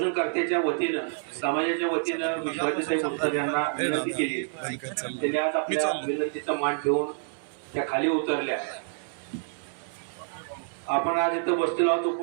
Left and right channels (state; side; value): silent; left; 59 dB below the other